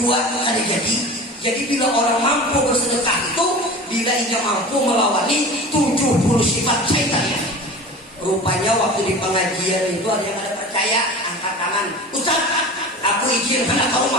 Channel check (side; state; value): both; normal; correlation 0.35